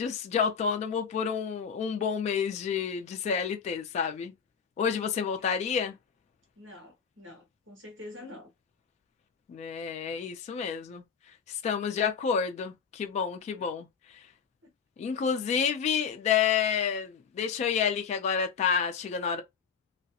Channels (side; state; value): right; quieter; 6.6 dB